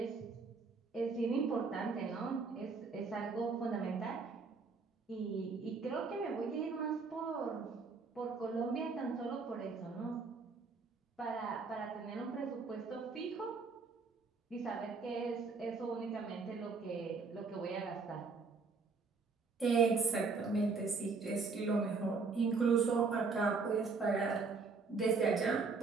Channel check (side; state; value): left; quieter; 4.6 dB